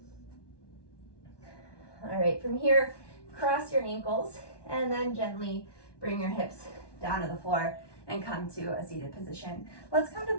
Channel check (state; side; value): late; right; 1.2 ms